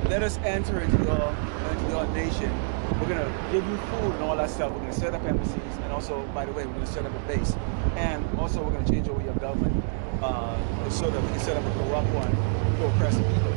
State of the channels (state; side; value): silent; left; digital silence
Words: let us enter into your nation. We're going to give you food and all that stuff. We're going to set up embassies. And also, by the way, we're going to set up a base. And also, we're going to change over your government so that we can set up a corrupt one for oppressing people.